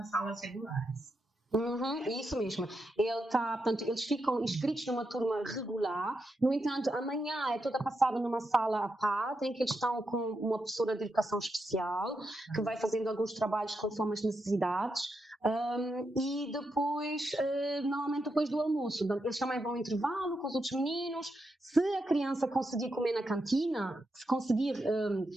salas regulares. Isso mesmo. Portanto, eles ficam inscritos numa turma regular. No entanto, amanhã é toda passada numa sala à parte, em que eles estão com uma professora de educação especial, que vai fazendo alguns trabalhos conforme as necessidades. E depois, normalmente depois do almoço, eles também vão ao intervalo com os outros meninos. Se a criança conseguir comer na cantina, se conseguir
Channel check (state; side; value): normal; both; correlation 0.85